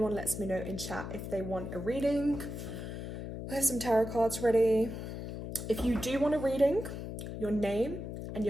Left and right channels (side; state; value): left; noise; hum, 7 dB below the sound